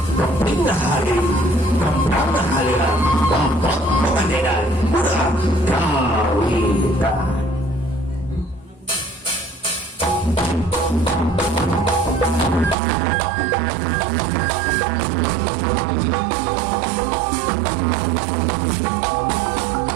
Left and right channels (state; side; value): drops out; left; at 12.8 s